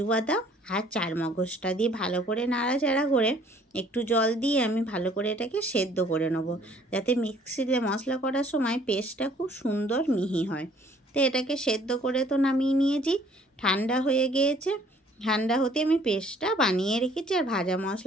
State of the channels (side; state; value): both; normal; correlation 0.58